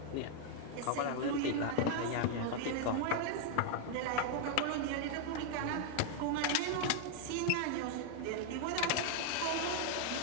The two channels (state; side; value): different; both; correlation 0.00